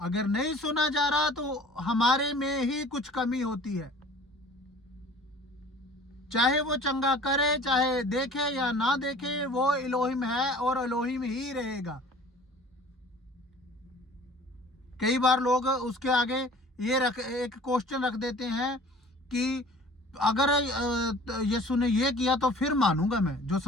नहीं सुना जा रहा तो हमारे में ही कुछ कमी होती है। चाहे वो चंगा करे, चाहे देखे या ना देखे, वो इलोहिम है और इलोहिम ही रहेगा। कई बार लोग उसके आगे एक क्वेश्चन रख देते हैं कि अगर यीशु ने ये किया तो फिर मानूंगा मैं। जो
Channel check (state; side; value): normal; both; correlation 0.47